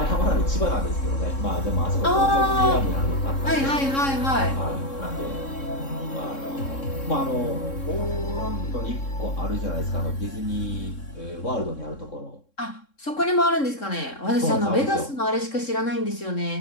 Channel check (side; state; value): right; late; 3.7 ms